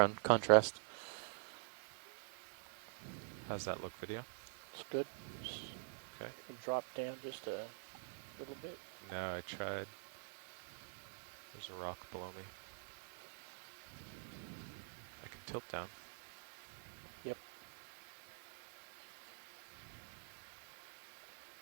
contrast. How's that look, video? It's good. Okay. You can drop down just a little bit. No, I tried. There's a rock below me. I can tilt down. Yep.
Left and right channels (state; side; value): silent; left; digital silence